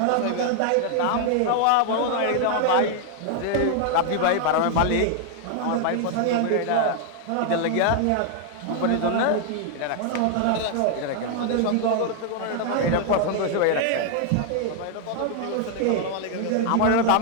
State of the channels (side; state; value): both; different; correlation 0.00